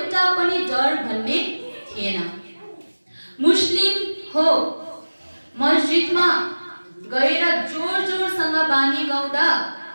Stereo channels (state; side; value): inverted; both; correlation -1.00